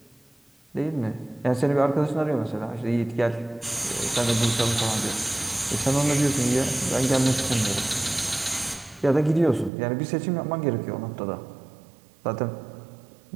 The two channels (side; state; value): left; drops out; at 9.7 s